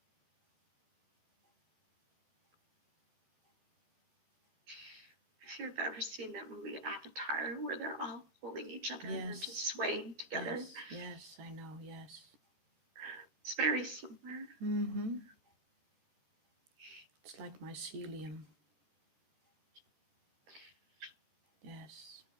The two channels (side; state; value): left; late; 13 ms